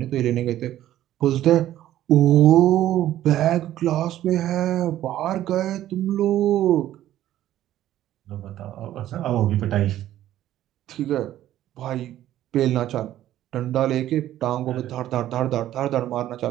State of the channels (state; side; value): quieter; left; 13.0 dB